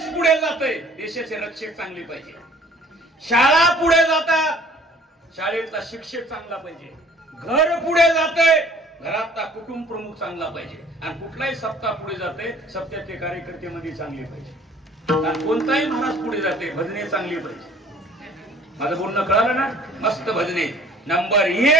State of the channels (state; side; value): normal; both; correlation 0.54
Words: पुढे जातोय, देशाचे रक्षक चांगली पाहिजे. शाळा पुढे जातात, शाळेतला शिक्षक चांगला पाहिजे. घर पुढे जातंय, घरातला कुटुंब प्रमुख चांगला पाहिजे. आणि कुठलाही सप्ताह पुढे जाते, सप्त्यातले कार्यकर्ते मध्ये चांगले पाहिजे. आणि कोणताही महाराज पुढे जाते, भजने चांगली पाहिजे. माझं बोलणं कळालं ना? मस्त भजने. नंबर